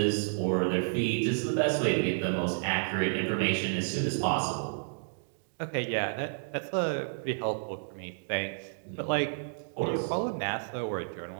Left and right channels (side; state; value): left; silent; digital silence